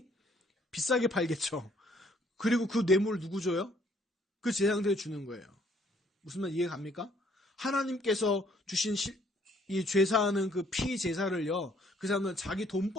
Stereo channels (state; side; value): normal; both; correlation 0.64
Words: 비싸게 팔겠죠. 그리고 그 뇌물을 누구 줘요? 그 제사장들이 주는 거예요. 무슨 말 이해 갑니까? 하나님께서 주신 이 죄사하는 그 피 제사를요, 그 사람은 자기